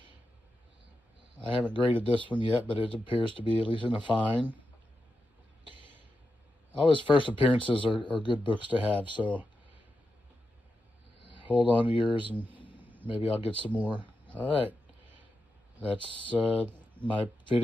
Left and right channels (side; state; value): both; normal; correlation 0.88